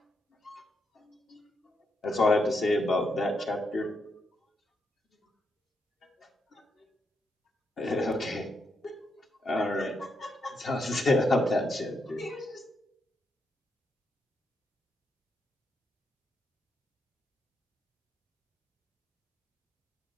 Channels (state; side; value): normal; both; correlation 0.80